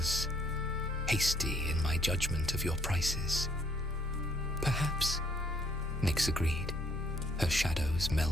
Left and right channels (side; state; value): both; normal; correlation 0.66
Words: hasty in my judgment of your prices. Perhaps, Nyx agreed, her shadows